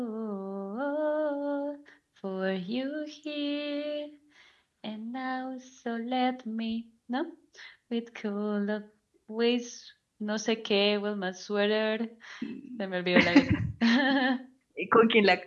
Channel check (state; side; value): identical; both; correlation 1.00